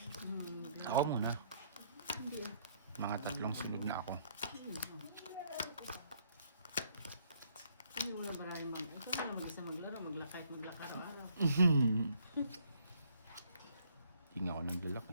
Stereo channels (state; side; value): inverted; both; correlation -0.67